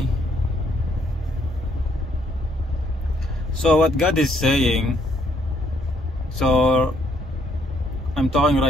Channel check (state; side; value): normal; both; correlation 0.69